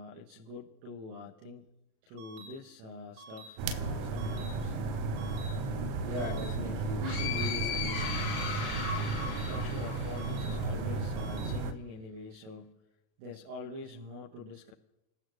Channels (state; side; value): late; left; 37 ms